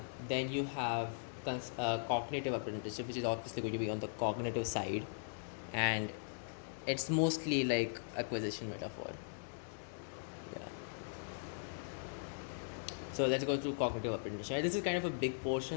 Then you have cognitive apprenticeship, which is obviously going to be on the cognitive side, and it's mostly like acquisition metaphor. Yeah. So let's go through cognitive apprenticeship. This is kind of a big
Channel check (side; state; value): right; silent; 51 dB below the other